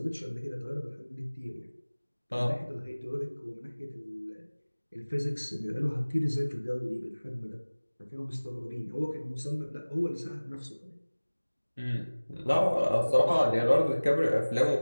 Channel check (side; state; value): both; inverted; correlation -1.00